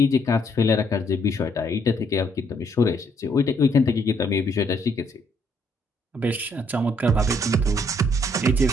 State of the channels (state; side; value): normal; both; correlation 0.69